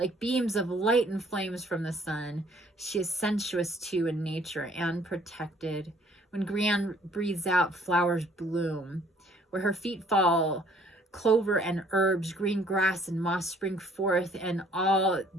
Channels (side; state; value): both; normal; correlation 0.60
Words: beams of light and flames from the sun, she is sensuous too in nature and protected. When Grianne breathes out, flowers bloom. Where her feet fall, clover and herbs, green grass and moss spring forth, and all